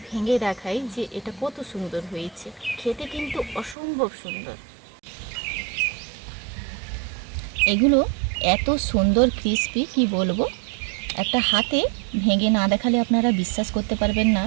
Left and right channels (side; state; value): left; drops out; at 3.8 s